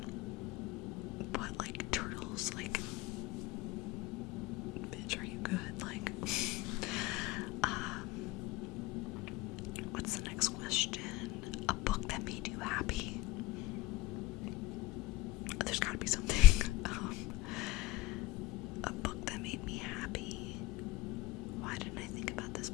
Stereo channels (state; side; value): quieter; right; 17.3 dB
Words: But like Turtles, like, bitch, are you good? Like, what's the next question? A book that made you happy? There's gotta be something. A book that made me happy. Why didn't I think about this